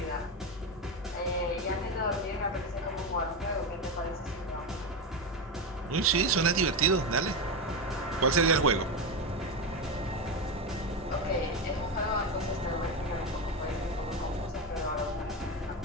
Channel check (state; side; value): normal; both; correlation 0.14